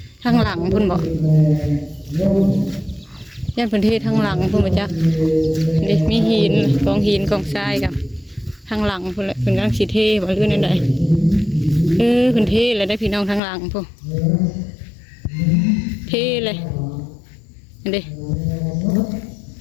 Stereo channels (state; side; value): drops out; right; at 13.4 s